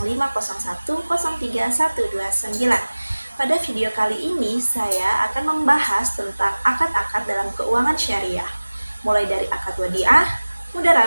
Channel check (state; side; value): inverted; both; correlation -1.00